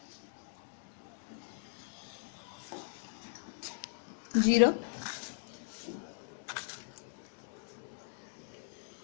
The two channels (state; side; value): silent; right; digital silence